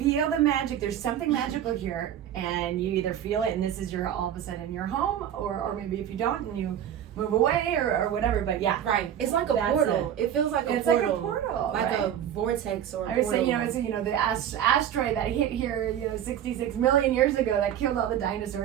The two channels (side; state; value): left; quieter; 10.2 dB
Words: the magic, there's something magical here, and you either feel it and this is your, all of a sudden, your home, or maybe if you don't and you move away or whatever. But yeah. It's like a portal. It feels like a portal. It's like a portal. Like a vortex or a portal. I was saying, you know, it's, you know, the asteroid that hit here, you know, 66 million years ago that killed all the